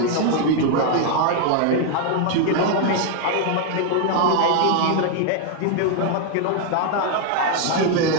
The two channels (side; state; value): both; different; correlation 0.00